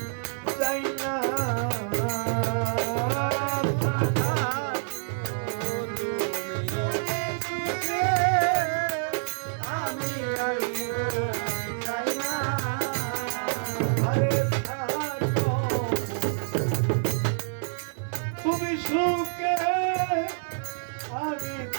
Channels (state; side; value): silent; left; digital silence